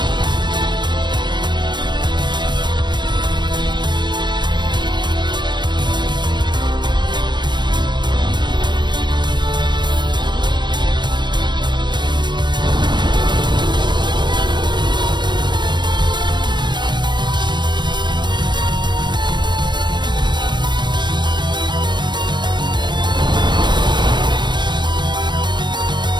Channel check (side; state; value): left; late; 0.22 ms